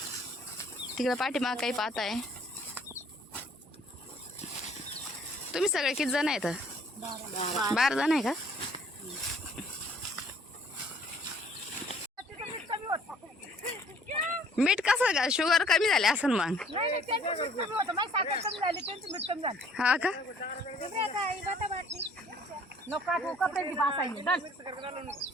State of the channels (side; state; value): both; normal; correlation 0.58